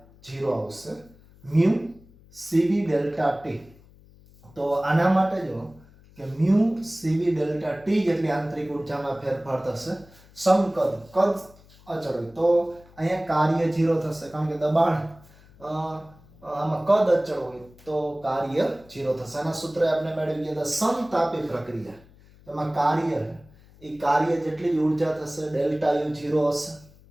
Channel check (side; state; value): left; noise; hum, 25 dB below the sound